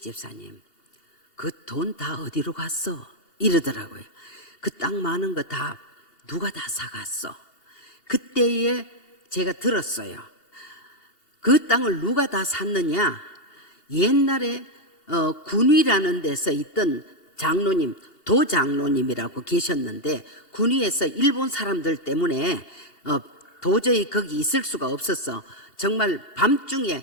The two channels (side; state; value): right; late; 2.8 ms